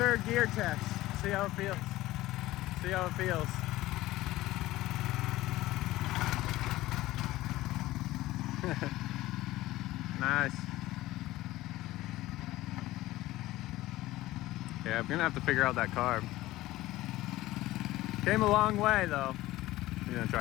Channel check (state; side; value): quieter; right; 17.0 dB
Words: gear test. See how it feels. See how it feels. Nice. Yeah, I'm gonna have to figure out that carb. Came a long way though. You gonna